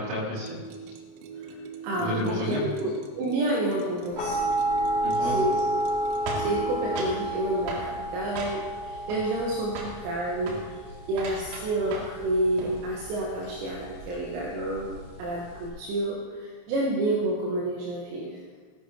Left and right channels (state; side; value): late; left; 29 ms